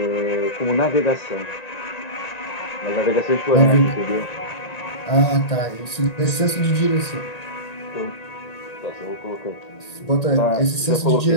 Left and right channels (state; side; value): late; right; 1.8 ms